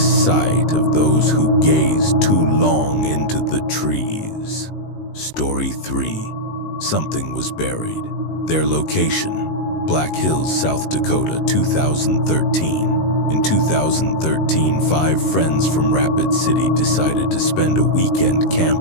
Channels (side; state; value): right; late; 19 ms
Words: of those who gaze too long into the trees. Story 3. Something was buried. Their location: Black Hills, South Dakota, 2013. In 2013, 5 friends from Rapid City decided to spend a weekend